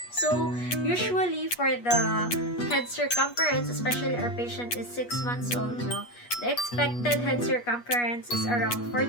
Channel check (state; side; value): late; right; 8.3 ms